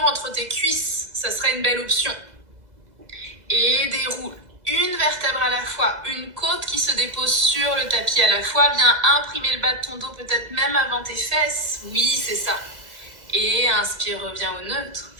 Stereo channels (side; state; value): left; late; 2.0 ms